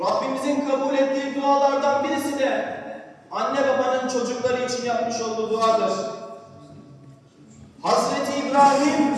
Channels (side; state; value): both; identical; correlation 1.00